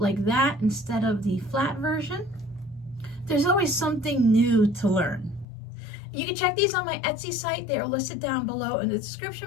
like that instead of the flat version. There's always something new to learn. You can check these on my Etsy site. They are listed down below in the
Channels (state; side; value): drops out; right; at 5.5 s